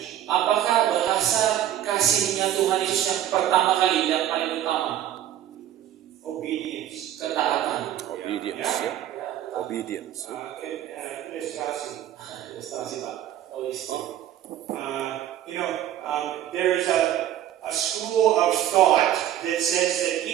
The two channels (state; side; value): quieter; left; 11.7 dB